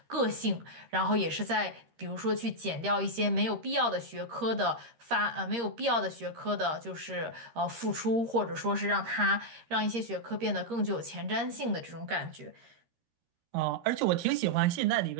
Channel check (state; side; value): late; left; 13 ms